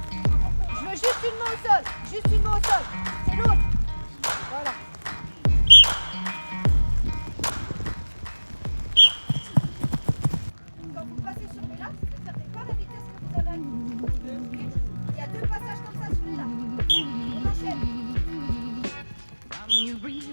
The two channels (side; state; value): both; inverted; correlation -1.00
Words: Je veux juste une main au sol. Juste une main au sol. C'est l'autre. Voilà. Quand vous passez sur les lacs, ne perdez pas la vitesse que vous avez acquis. Il y a 2 passages comme ça sur les lacs. On enchaîne.